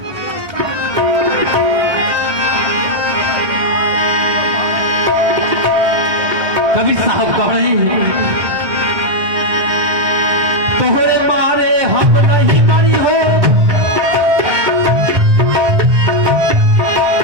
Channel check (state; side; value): late; left; 1.2 ms